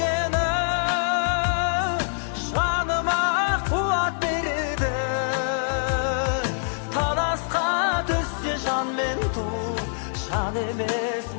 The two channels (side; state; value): right; silent; digital silence